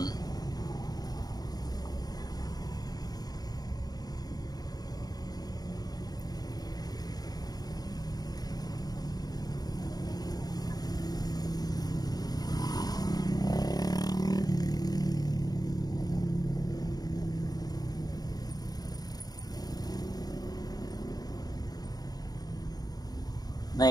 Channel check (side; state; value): right; late; 0.19 ms